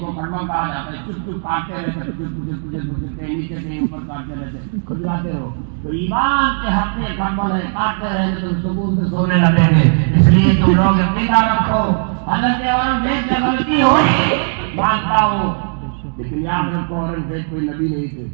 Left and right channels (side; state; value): left; silent; 62 dB below the other